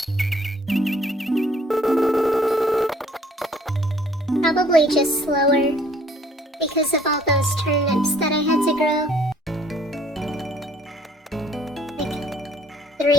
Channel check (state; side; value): normal; both; correlation 0.59